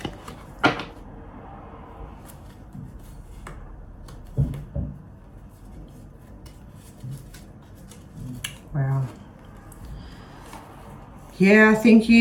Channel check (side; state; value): both; identical; correlation 1.00